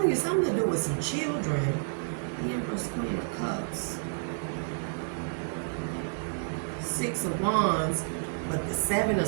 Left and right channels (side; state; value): left; silent; digital silence